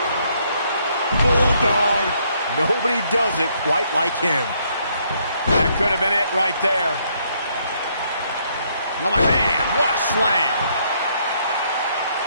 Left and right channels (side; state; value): both; inverted; correlation -0.70